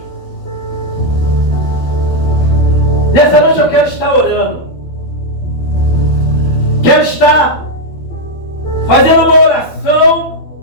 Nessa noite eu quero estar orando. Quero estar fazendo uma oração,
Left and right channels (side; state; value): right; late; 12 ms